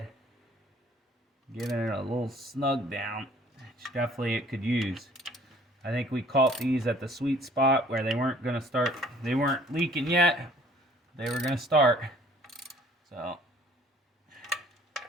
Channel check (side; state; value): both; normal; correlation 0.56